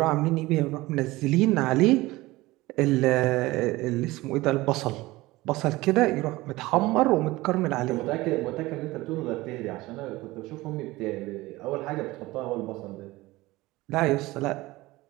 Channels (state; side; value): quieter; left; 19.6 dB